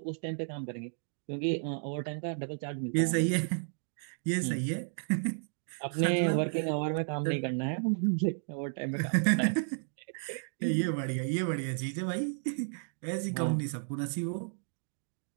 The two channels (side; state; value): left; silent; digital silence